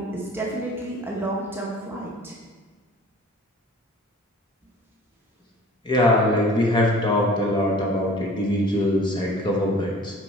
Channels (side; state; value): both; normal; correlation 0.47